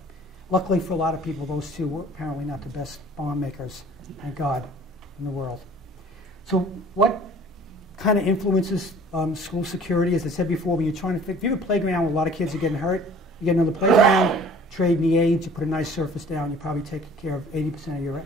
luckily for a lot of people, those two were apparently not the best bomb makers, thank God, in the world. So what kind of influences school security? As I said before, when you're trying to if you have a playground where a lot of kids are getting hurt, you get another playground, trade the aids, you put a nice surface down, you probably take care of 80%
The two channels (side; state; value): both; normal; correlation 0.50